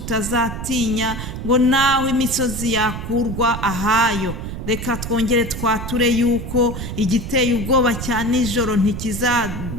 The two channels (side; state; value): right; noise; rumble, 7 dB below the sound